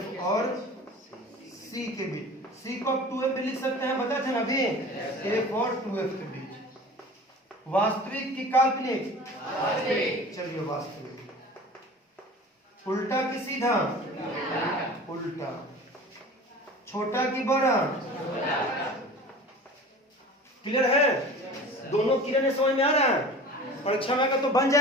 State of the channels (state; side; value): normal; both; correlation 0.40